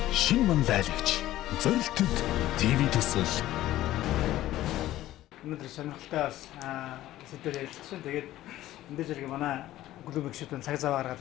шин манлайлагч. Зорилтод ТV төсөл. Өнөөдөр сонирхолтой бас сэдвээр ярилцсан. Тэгээд энэ зэрэг манай клубын гишүүдэн цаг зав гаргаад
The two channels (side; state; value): right; quieter; 14.7 dB